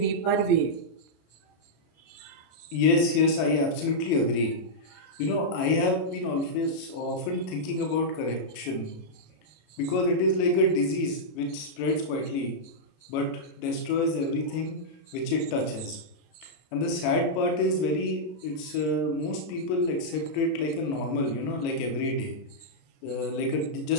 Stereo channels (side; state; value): right; late; 33 ms